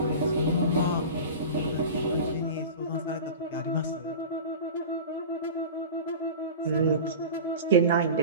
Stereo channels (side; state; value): both; inverted; correlation -0.33